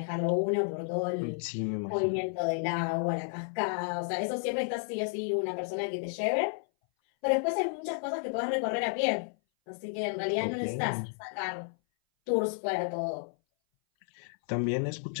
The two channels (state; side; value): silent; right; 57 dB below the other